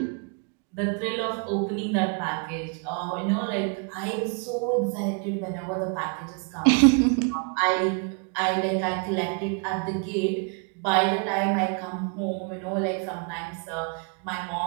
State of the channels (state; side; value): quieter; left; 36.2 dB